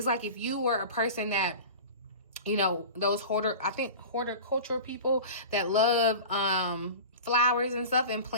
like if you were a person that, you know, those horticulture people that love flowers and stuff and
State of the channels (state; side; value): inverted; both; correlation -0.34